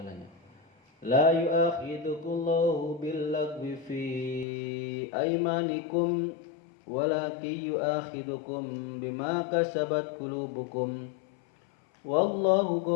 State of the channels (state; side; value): drops out; right; at 4.5 s